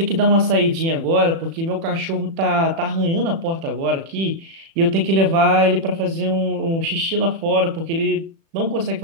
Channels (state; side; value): late; left; 36 ms